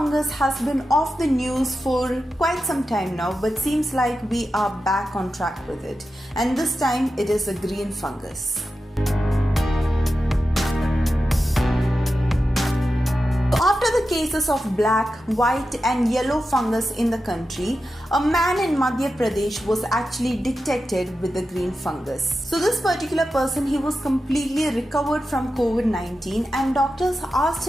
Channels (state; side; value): normal; both; correlation 0.91